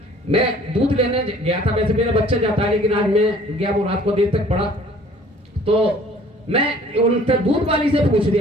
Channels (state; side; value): normal; both; correlation 0.53